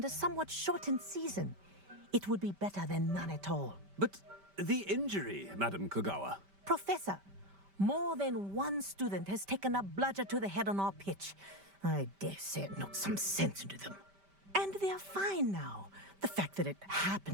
a somewhat shortened season. It would be better than none at all. But the injury, Madam Kogawa. Professor, more than one student has taken a bludger to the head on our pitch. I dare say it knocked some sense into them. And they're fine now. The fact that it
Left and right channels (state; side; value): late; left; 5.1 ms